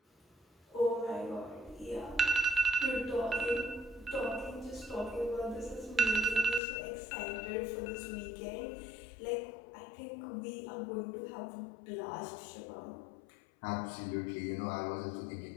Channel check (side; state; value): right; drops out; at 6.6 s